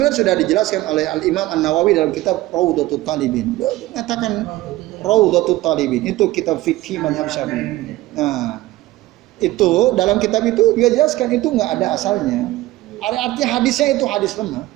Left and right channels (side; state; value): left; quieter; 17.4 dB